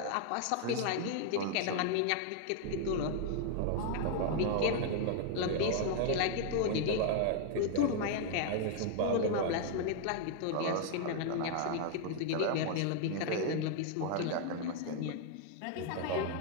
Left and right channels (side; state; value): both; different; correlation 0.00